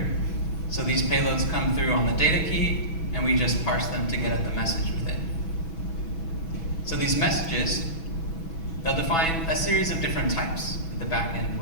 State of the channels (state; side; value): late; right; 6.1 ms